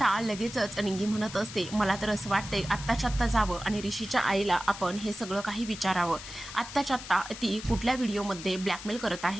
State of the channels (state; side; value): noise; left; hiss, 12 dB below the sound